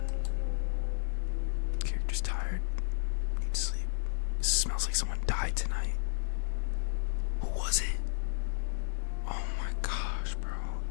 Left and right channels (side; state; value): right; silent; digital silence